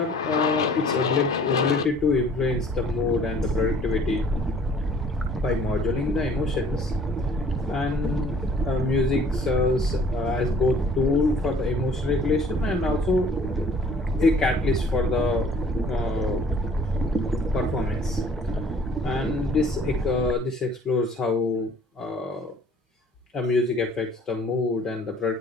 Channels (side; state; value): both; normal; correlation 0.54